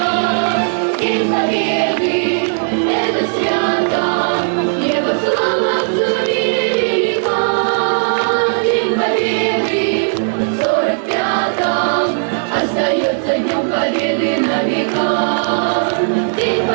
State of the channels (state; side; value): silent; left; 63 dB below the other